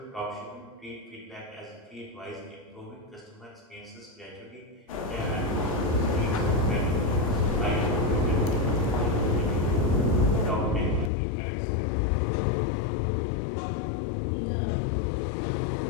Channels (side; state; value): right; drops out; at 11.1 s